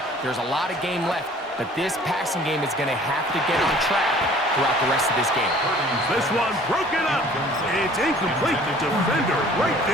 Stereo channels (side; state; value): both; normal; correlation 0.51